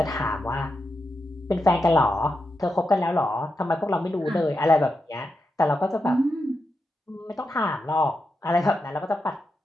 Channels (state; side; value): normal; both; correlation 0.87